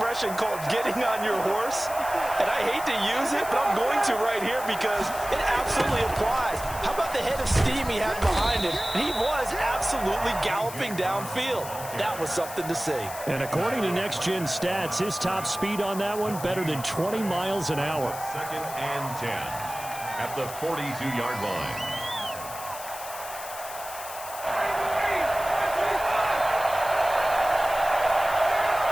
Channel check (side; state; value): left; noise; hiss, 12 dB below the sound